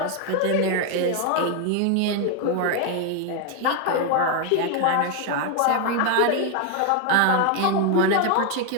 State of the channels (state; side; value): different; both; correlation 0.01